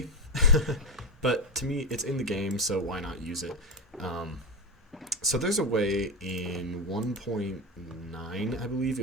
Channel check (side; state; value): both; normal; correlation 0.14